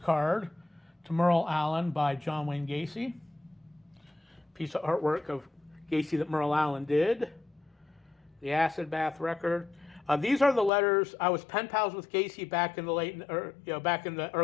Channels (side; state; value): right; drops out; at 10.7 s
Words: to Merle Allen by John Wayne Gacy. Piece of artwork of Gacy that Merle Allen did. The acid bath record. These are the letters. I was pen pals with Gacy back in the back in the